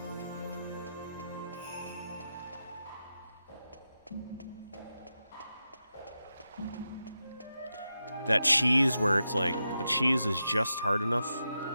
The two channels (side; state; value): both; inverted; correlation -0.88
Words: That cheese where it's like, the cheese is just hard enough